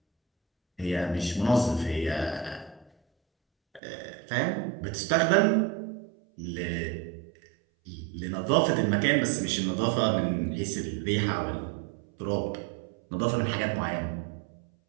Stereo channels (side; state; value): left; drops out; at 3.8 s